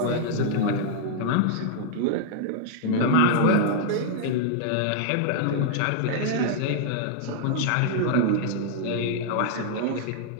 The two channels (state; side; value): different; both; correlation -0.01